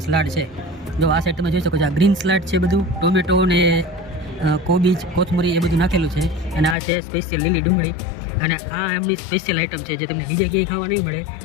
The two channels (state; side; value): drops out; right; at 6.8 s